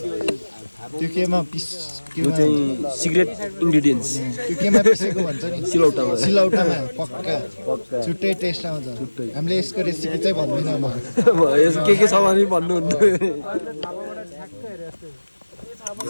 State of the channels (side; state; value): both; inverted; correlation -1.00